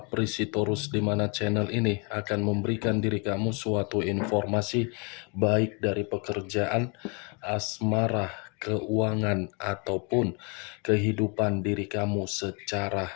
di mana channel ini akan memberikan diri kamu suatu informasi baik dari pekerjaan, asmara, keuangan, ataupun kehidupan diri kamu secara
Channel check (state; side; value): quieter; right; 33.8 dB